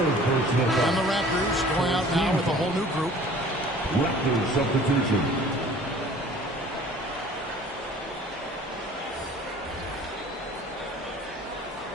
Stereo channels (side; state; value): both; normal; correlation 0.49